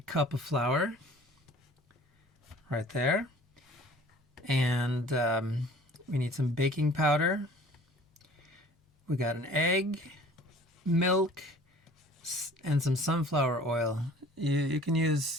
cup of flour right there. And we need some baking powder. We got an egg, milk, and some sunflower oil. You can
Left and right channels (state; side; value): normal; both; correlation 0.49